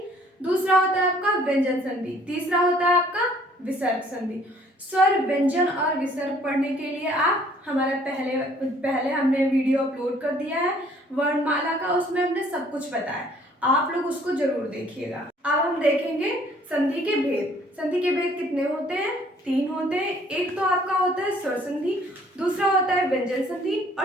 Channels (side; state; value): both; normal; correlation 0.59